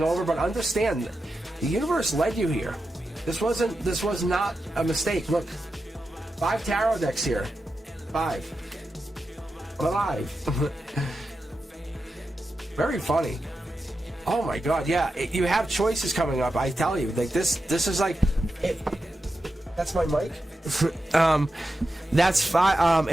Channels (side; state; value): both; normal; correlation 0.90